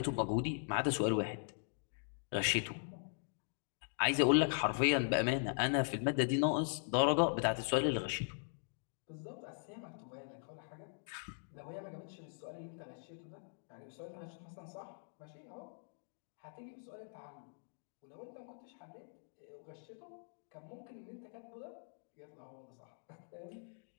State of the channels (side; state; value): right; silent; digital silence